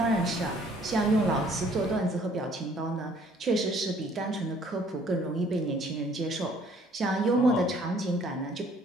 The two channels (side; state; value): both; normal; correlation 0.59